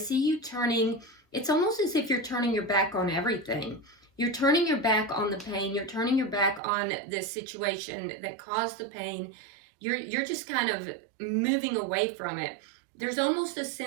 you turning, it's almost as if you're turning your back on everything. You're turning your back on the pain. You're turning your back on the situation that caused the pain. You're just kind of moving away from it. There's almost a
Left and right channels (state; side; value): drops out; left; at 6.6 s